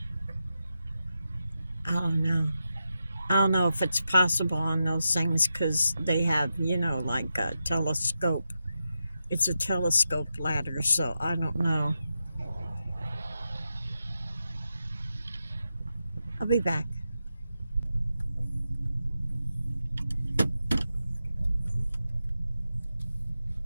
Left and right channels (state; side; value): inverted; both; correlation -0.89